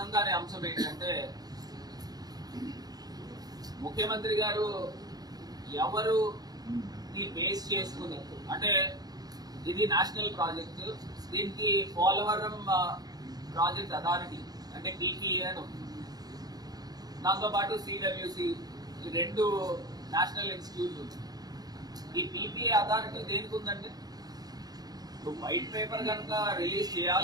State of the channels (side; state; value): left; late; 0.19 ms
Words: కాని అంశం ఏంటంటే, ముఖ్యమంత్రి గారు ఎవరు బేస్ చేసుకుని, అంటే ఇది నేషనల్ ప్రాజెక్టు, దీనికి పోలవరం ప్రాజెక్ట్ అథారిటీ అంటే పీపీఏ అని ఉంది, దాంతోపాటు సిడబ్ల్యూసి, ఈ రెండు నేషనల్ ఇన్స్టిట్యూట్ ఉంది. ఈ పీపీఏ అథారిటీ దేనికి ఉందంటే, వైట్ పేపర్ కనుక రిలీజ్